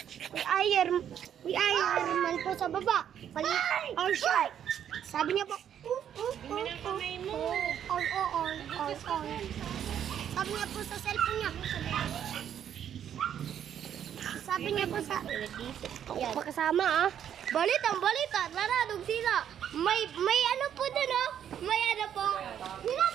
May Ironman po sa baba. Or shy. Sabi niya po, on. Sabi niya po sa cellphone niya. Sabi niya po sa... Yan. Pakasama ah. Balita, saradong sila. May ano po dun oh. May ano po.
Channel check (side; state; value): left; quieter; 9.5 dB